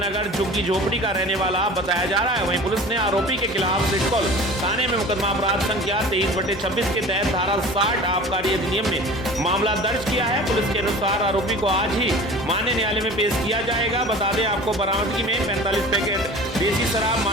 झुग्गी झोपड़ी का रहने वाला बताया जा रहा है। वहीं पुलिस ने आरोपी के खिलाफ सिडकुल थाने में मुकदमा अपराध संख्या 23/26 के तहत धारा 60 आबकारी अधिनियम में मामला दर्ज किया है। पुलिस के अनुसार आरोपी को आज ही मान्य न्यायालय में पेश किया जाएगा। बता दें आपको बरामदगी में 45 पैकेट देसी शराब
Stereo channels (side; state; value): both; normal; correlation 0.40